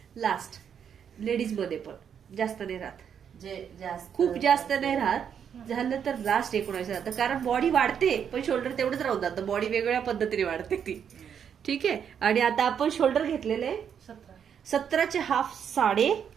लास्ट लेडीज मध्ये पण जास्त नाही राहत, जे जास्त खूप जास्त नाही राहत. झालं तर लास्ट 19 जातं, कारण बॉडी वाढते पण शोल्डर तेवढंच राहून जातं, बॉडी वेगवेगळ्या पद्धतीने वाढते ती. ठीक आहे. आणि आता आपण शोल्डर घेतलेले आहे 17चे हाफ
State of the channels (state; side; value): quieter; left; 8.0 dB